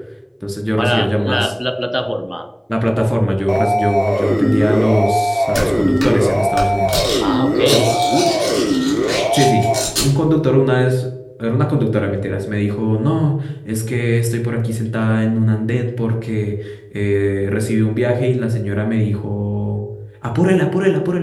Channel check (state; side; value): identical; both; correlation 1.00